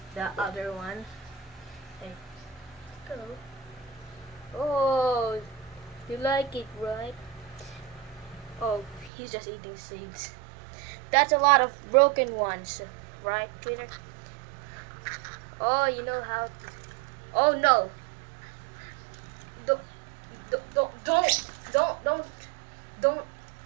the other one. Like, go. Oh, you like it, right? Oh, he's just eating seeds. That's a lot of broken ones, right, Twitter? Oh, you know how to... Oh no! Don't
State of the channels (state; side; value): drops out; left; at 9.1 s